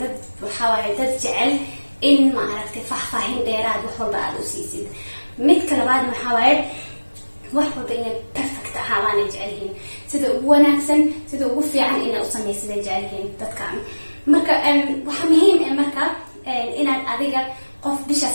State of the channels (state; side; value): inverted; both; correlation -1.00